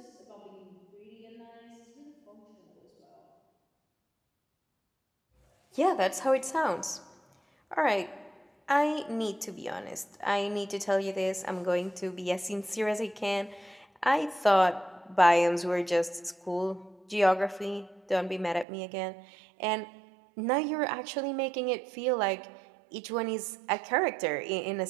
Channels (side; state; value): left; drops out; at 18.7 s